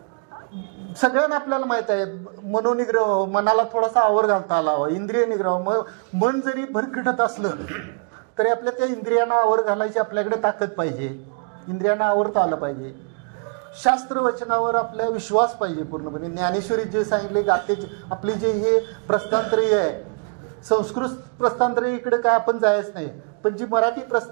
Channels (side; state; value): left; quieter; 37.7 dB